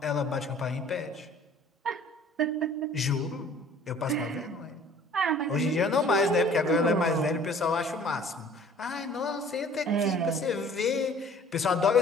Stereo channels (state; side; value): normal; both; correlation 0.51